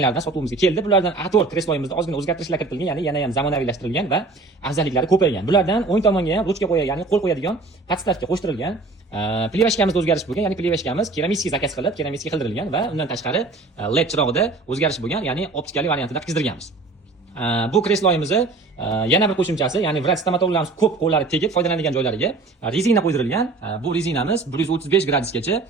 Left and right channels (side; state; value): left; quieter; 3.6 dB